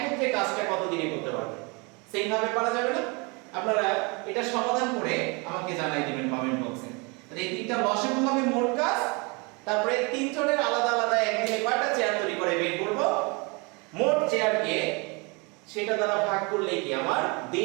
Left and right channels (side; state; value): left; quieter; 29.6 dB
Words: কাজটা কত দিনে করতে পারবে? সেইভাবে পারা যাবে না? আপনারা এটা সমাধান করে আমাকে জানাই দিবেন কমেন্ট বক্সে। তাহলে এই তিনটা লসাগু হবে মোট কাজ, তারপরে তিনজনের আলাদা আলাদা একদিনে কয়টা চেয়ার তৈরি করে বের করব, মোট চেয়ারকে সেটা দ্বারা ভাগ করলে কি আমার